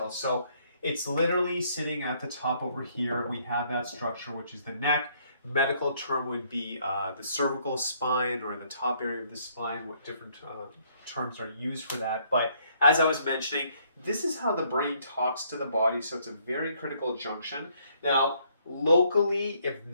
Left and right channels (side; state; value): both; inverted; correlation -0.67